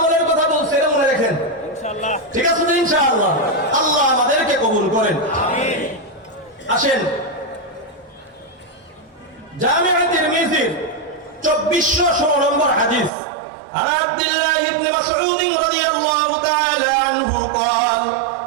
কথা বলছে এটা মনে রাখেন, ঠিক আছে তো ইনশাআল্লাহ? আল্লাহ আমাদেরকে কবুল করেন, আমিন। আসেন জামিআ তিরমিজির 2416 নম্বর হাদিস। عن عبد الله بن مسعود رضي الله تعالى عنه قال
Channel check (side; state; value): left; drops out; at 13.1 s